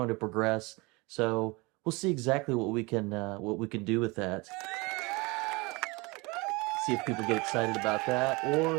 to progress. So we'll see exactly what we can do with that. See if people get excited about that, or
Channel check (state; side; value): quieter; left; 25.8 dB